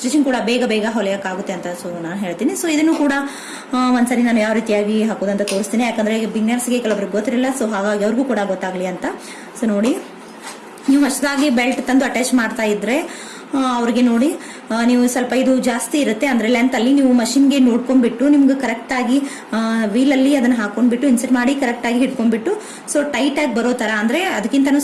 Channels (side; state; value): both; identical; correlation 1.00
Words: ಕೂಡ ಬೇಗ ಹೊಲಿಯಕ್ಕಾಗುತ್ತೆ ಅಂತ ಸೊ ನಾನು ಹೇಳ್ತೀನಿ. ಸೊ ಇದನ್ನು ಕೂಡ ಒಂದ್ಸರಿ ನಾನು ಯಾವ ರೀತಿಯಾಗಿ ಹಾಕೋದಂತ ತೋರಿಸ್ತೀನಿ. ಯಾಕಂದ್ರೆ ಬಿಗಿನರ್ಸ್ಗೆ ಕೆಲವರಿಗೆ ಗೊತ್ತಿರಲಿಲ್ಲ, ಸೊ ಹಾಗಾಗಿ ಅವ್ರಿಗೂ ಕೂಡ ಗೊತ್ತಾಗ್ಲಿ ಅಂತ. ಸೊ ನೋಡಿ, ನೀವು ಹೊಸದಾಗಿ ಬೆಲ್ಟ್ ತಂದು ಅಟ್ಯಾಚ್ ಮಾಡ್ತಾ ಇದ್ರೆ ಅವ್ರಿಗೆ ನೋಡಿ, ನೀವು ಸ್ವಲ್ಪ ಇದು ಜಾಸ್ತಿ ಇರುತ್ತೆ ಅಂದ್ರೆ ಲೆಂತ್ ಅಲ್ಲಿ ನೀವು ಮಷಿನ್ಗೆ ನೋಡ್ಕೊಂಡ್ಬಿಟ್ಟು ನಿಮ್ಗೆ ಕರೆಕ್ಟ್ ಆಗಿ ವೀಲ್ ಅಲ್ಲಿ ಅದನ್ನ ಹಾಕೊಂಡ್ಬಿಟ್ಟು ಇನ್ಸರ್ಟ್ ಮಾಡಿ ಕರೆಕ್ಟ್ ಆಗಿ ಹಿಡ್ಕೊಂಡ್ಬಿಟ್ಟು ಸೊ ಟೈಟ್ ಆಗಿ ಬರೋ ತರ, ಅಂದ್ರೆ ಅದಕ್ಕಿಂತ